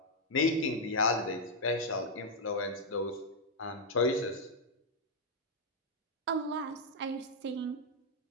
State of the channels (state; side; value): normal; both; correlation -0.02